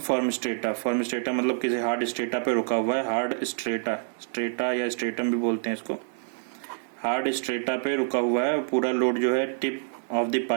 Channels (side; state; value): left; silent; digital silence